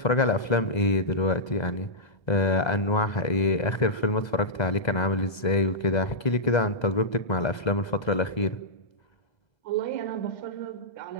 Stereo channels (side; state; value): right; late; 2.0 ms